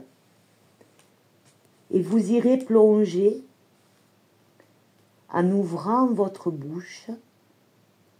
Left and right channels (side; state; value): both; identical; correlation 1.00